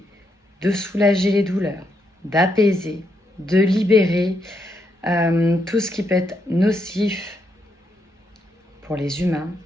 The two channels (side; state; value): both; normal; correlation 0.79